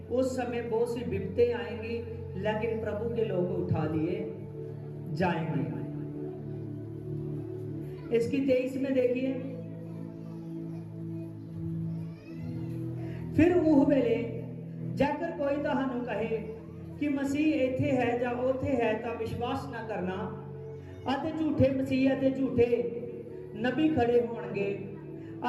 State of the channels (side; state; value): both; identical; correlation 1.00